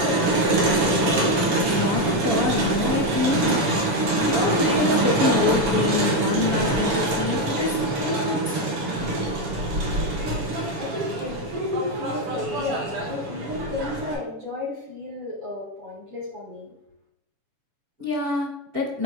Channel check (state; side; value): late; left; 7.1 ms